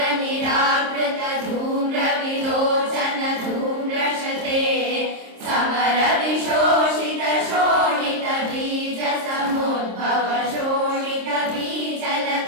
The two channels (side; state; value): left; late; 26 ms